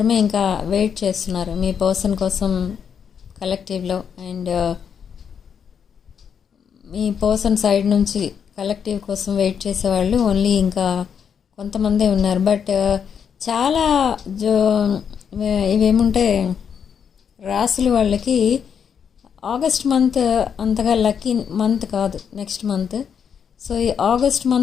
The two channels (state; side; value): quieter; right; 7.4 dB